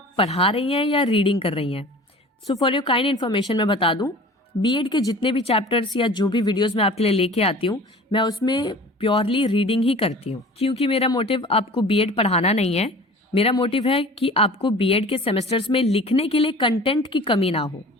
पढ़ा रही हैं या रीडिंग कर रही हैं. So for your kind information मैं बता दूं, B.Ed के जितने भी चैप्टर्स या जो भी वीडियोस मैं आपके लिए लेके आती हूँ मैं उसमें प्योरली रीडिंग ही करती हूँ, क्योंकि मेरा मोटिव आपको B.Ed पढ़ाना नहीं है. मेरा मोटिव है कि आपको B.Ed के सेमेस्टर्स में लिखने के लिए कंटेंट की कमी ना हो,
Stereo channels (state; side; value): normal; both; correlation 0.42